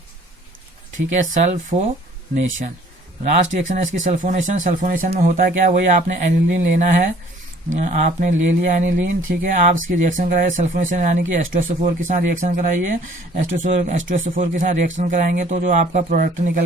ठीक है, सल्फोनेशन लास्ट रिएक्शन है इसकी सल्फोनेशन। सल्फोनेशन में होता है क्या, वही आपने एनिलीन लेना है, आपने ले लिया एनिलीन, ठीक है, आप इसकी रिएक्शन कराइए सल्फोनेशन यानी कि H2SO4 के साथ रिएक्शन कराइए। H2SO4 के साथ रिएक्शन कराएंगे तो जो आपका प्रोडक्ट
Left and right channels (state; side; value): normal; both; correlation 0.55